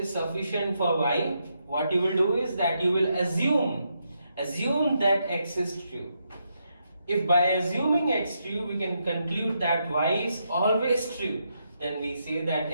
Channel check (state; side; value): inverted; both; correlation -0.81